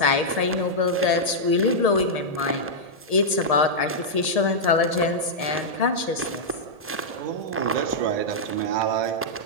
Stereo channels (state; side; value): late; left; 1.7 ms